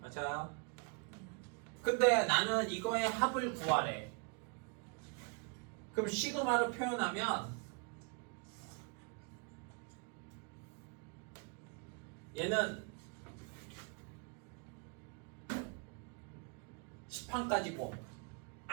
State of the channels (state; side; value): quieter; left; 35.5 dB